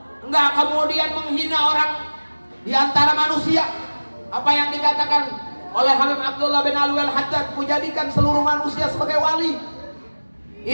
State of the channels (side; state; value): both; inverted; correlation -1.00